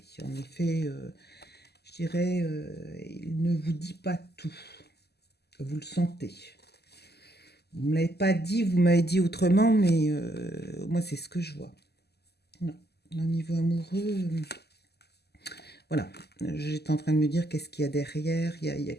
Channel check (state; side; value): late; right; 0.47 ms